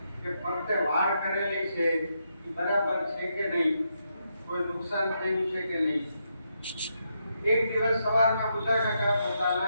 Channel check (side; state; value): both; inverted; correlation -0.81